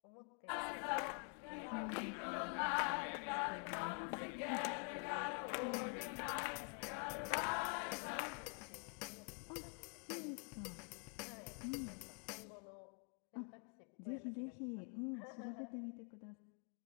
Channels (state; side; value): quieter; right; 37.4 dB